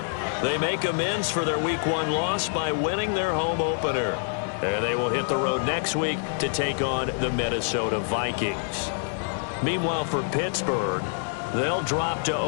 they make amends for their Week 1 loss by winning their home opener. And they will hit the road next week to take on the Minnesota Vikings. Meanwhile, for Pittsburgh, they'll drop to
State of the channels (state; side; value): silent; right; 61 dB below the other